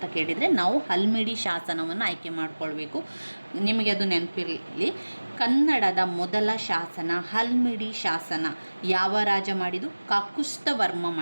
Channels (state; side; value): inverted; both; correlation -1.00